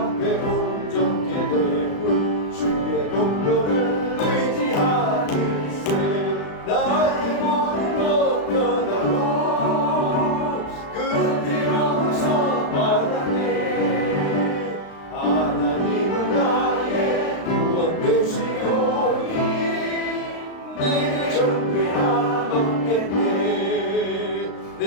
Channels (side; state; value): right; late; 35 ms